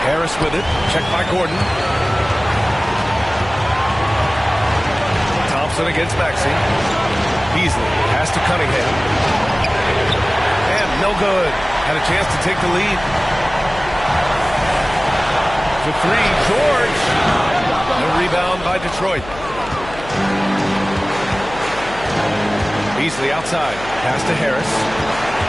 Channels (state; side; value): noise; left; hum, 15 dB below the sound